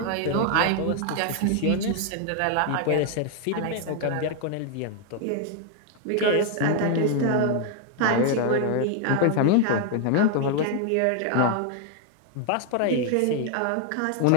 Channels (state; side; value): different; both; correlation 0.00